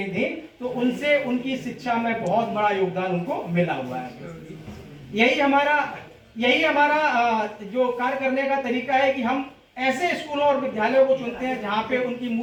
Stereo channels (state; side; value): identical; both; correlation 1.00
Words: थी, तो उनसे उनकी शिक्षा में बहुत बड़ा योगदान उनको मिला हुआ है। यही हमारा जो कार्य करने का तरीका है कि हम ऐसे स्कूलों और विद्यालयों को चुनते हैं जहां पे उनकी